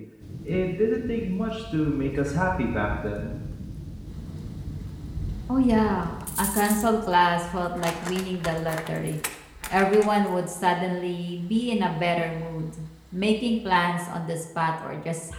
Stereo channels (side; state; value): both; identical; correlation 1.00